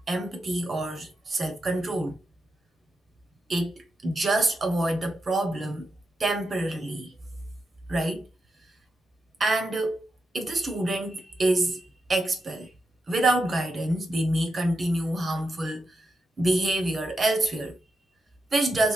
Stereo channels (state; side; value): normal; both; correlation 0.87